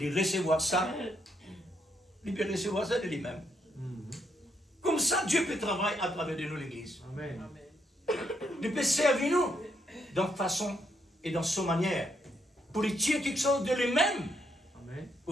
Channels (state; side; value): normal; both; correlation 0.76